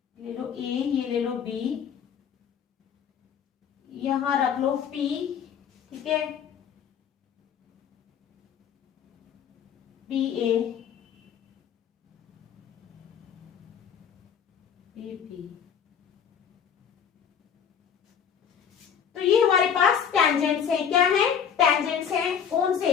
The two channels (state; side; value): quieter; right; 7.8 dB